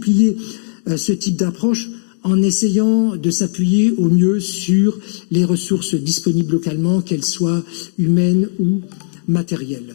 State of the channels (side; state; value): right; silent; digital silence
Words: ce type d'approche en essayant de s'appuyer au mieux sur les ressources disponibles localement, qu'elles soient humaines ou